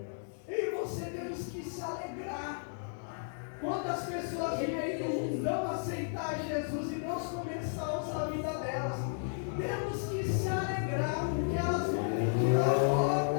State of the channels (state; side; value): silent; right; digital silence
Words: E você temos que se alegrar. Quantas pessoas vêm aí no mundão aceitar Jesus e Deus começar a usar a vida delas? Temos que se alegrar, porque elas vão pedir a